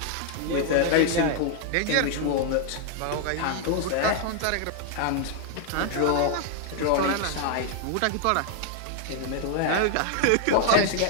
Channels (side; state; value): both; different; correlation 0.00